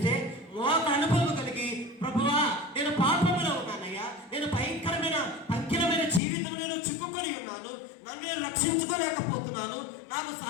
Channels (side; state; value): right; drops out; at 6.2 s